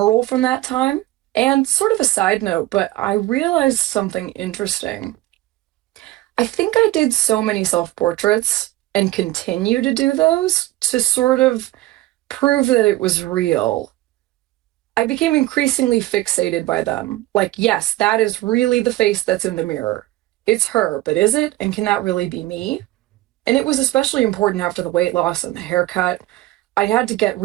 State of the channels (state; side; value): quieter; left; 17.1 dB